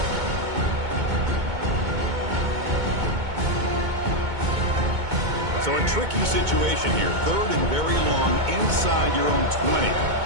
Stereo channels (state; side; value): late; left; 2.2 ms